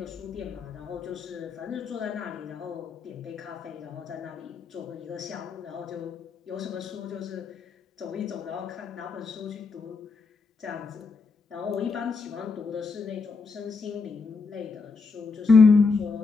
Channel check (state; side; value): quieter; right; 4.5 dB